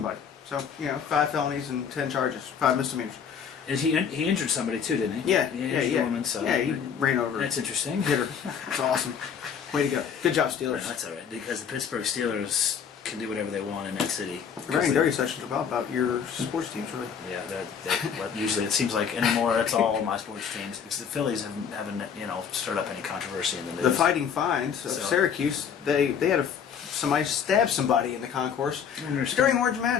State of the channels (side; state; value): right; quieter; 7.4 dB